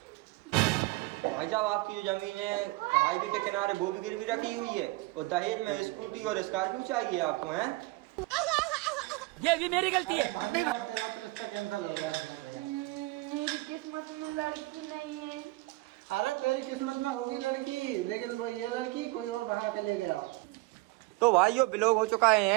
भाई साहब आपकी जो जमीन है हाईवे के किनारे वो भी गिरवी रखी हुई है और दहेज में स्कूटी और स्कॉर्पियो चाहिए आपको हैं? ये भी मेरी गलती है। भाभी यार तेरा तो रिश्ता कैंसिल हो गया। मेरी किस्मत में लड़की नहीं है। अरे तेरी किस्मत में होगी लड़की, लेकिन वो ये लड़की कोई और बढ़ा के ले गया। तो भाइयों ब्लॉग हो चुका है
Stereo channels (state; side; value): quieter; left; 22.2 dB